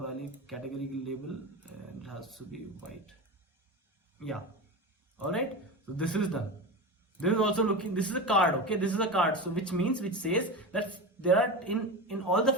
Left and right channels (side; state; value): both; normal; correlation 0.24